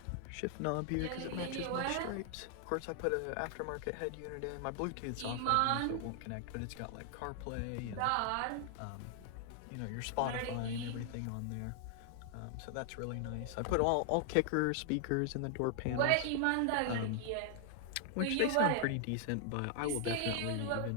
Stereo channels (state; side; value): different; both; correlation 0.00